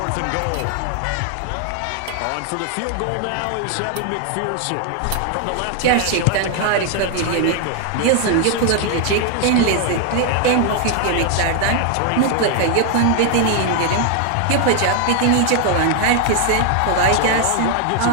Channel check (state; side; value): different; both; correlation 0.00